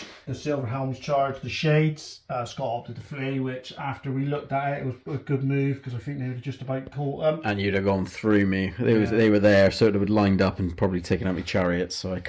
The Silver Helms charged the Shades. Scott opted to flee, which after we looked at it was a good move because I think they would have just about caught them. And you'd have gone through me. They were there, so it would have lined up and probably taken out my chariots, so I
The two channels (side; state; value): both; identical; correlation 1.00